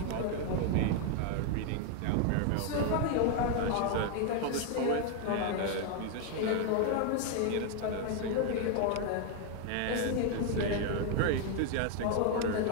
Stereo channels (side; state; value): both; different; correlation 0.01